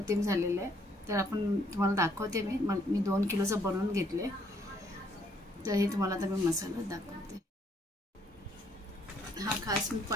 झालेला आहे. तर आपण तुम्हाला दाखवते. मी 2 किलोचं बनवून घेतले. तर हे तुम्हाला आता मी मसाला दाखवते. हा खास मी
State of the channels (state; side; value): normal; both; correlation 0.67